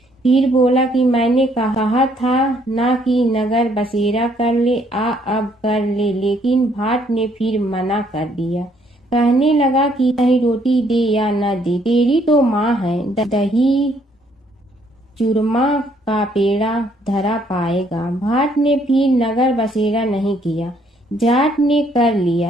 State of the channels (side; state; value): both; normal; correlation 0.67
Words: फिर बोला कि मैंने कहा था ना कि नगर बसेरा कर ले, अब कर ले, लेकिन भाट ने फिर मना कर दिया। कहने लगा कि चाहे रोटी दे या न दे, तेरी तो माँ है, दही चूरमा का पेड़ा धरा पाएगा। भाट ने फिर नगर बसेरा नहीं किया। जाट ने कर